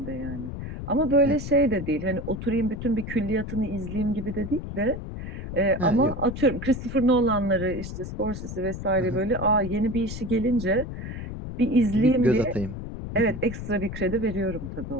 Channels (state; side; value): noise; left; rumble, 7 dB below the sound